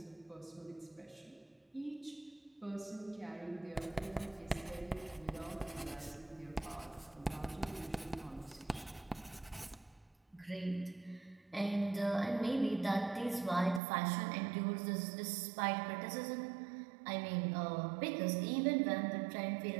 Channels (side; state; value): left; drops out; at 13.8 s